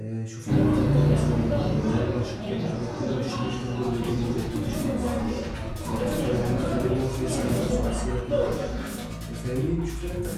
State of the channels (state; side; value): identical; both; correlation 1.00